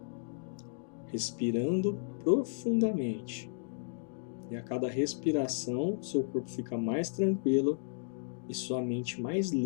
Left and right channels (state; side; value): silent; right; digital silence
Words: Respirando profundamente. E a cada respiração, seu corpo fica mais tranquilo e sua mente mais